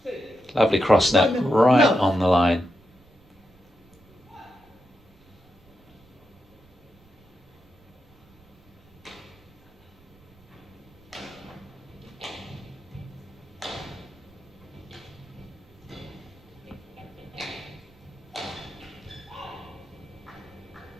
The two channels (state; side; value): noise; right; rumble, 28 dB below the sound